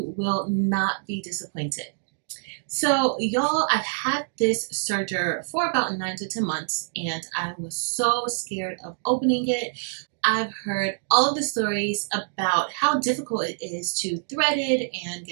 will not be disappointed. So y'all, I've had this serger for about 9 to 10 months, and I was so scared of opening it. I've heard all of the stories about how difficult it is to thread it and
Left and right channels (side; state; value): left; silent; digital silence